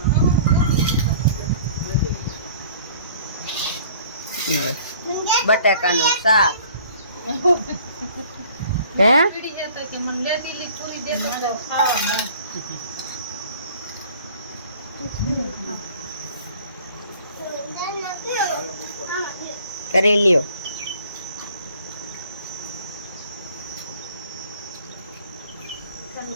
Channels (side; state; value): both; inverted; correlation -0.51